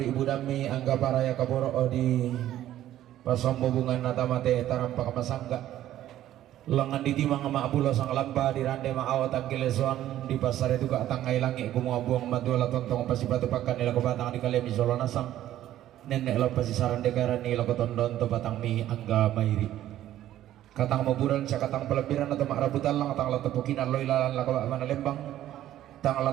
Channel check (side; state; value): left; quieter; 12.9 dB